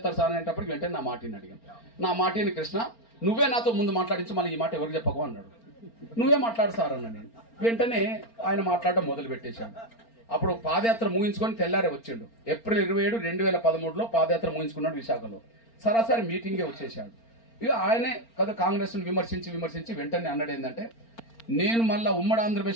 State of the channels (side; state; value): right; late; 4.4 ms